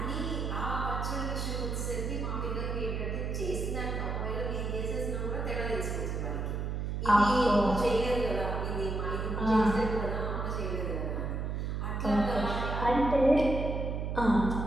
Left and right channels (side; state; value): right; noise; hum, 2 dB below the sound